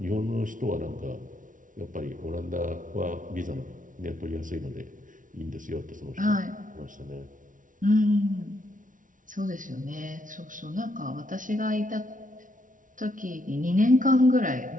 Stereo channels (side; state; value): left; late; 0.38 ms